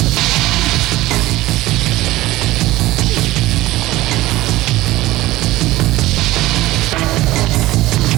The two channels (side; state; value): left; quieter; 17.4 dB